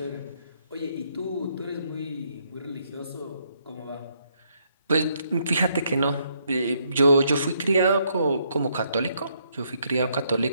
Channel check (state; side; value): inverted; both; correlation -0.73